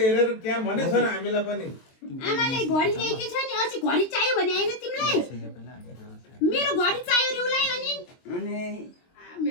हेरेर क्या भनेछ र हामीलाई पनि आमाले घडी ल्याइदिएछ नि अस्ति घडी चाहियो भने हैन तिमीलाई मेरो घडी चाहियो रे उलाई अनि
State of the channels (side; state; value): right; late; 23 ms